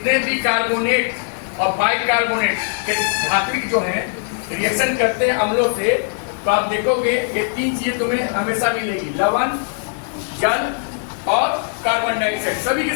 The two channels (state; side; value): silent; right; 66 dB below the other